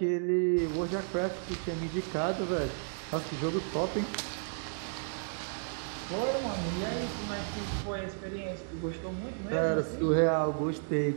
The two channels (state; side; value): silent; left; digital silence